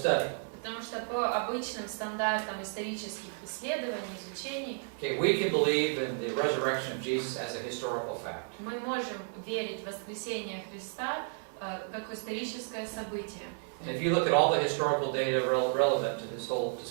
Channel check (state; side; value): silent; left; 56 dB below the other